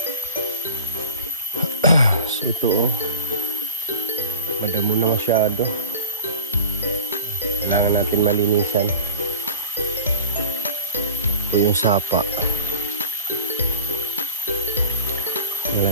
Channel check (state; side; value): inverted; both; correlation -0.37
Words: So ito oh. Madamo na masyado. Kailangan natin malinisan. Ito yung sapa.